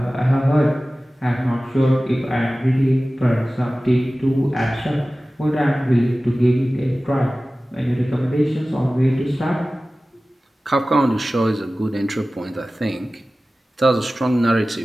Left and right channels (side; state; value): both; normal; correlation 0.96